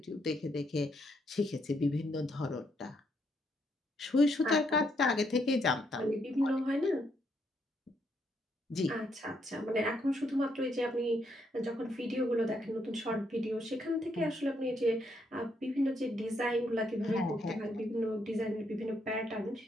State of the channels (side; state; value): both; normal; correlation 0.75